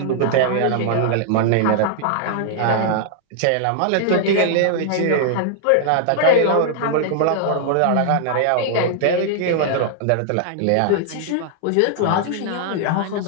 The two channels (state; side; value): different; both; correlation -0.01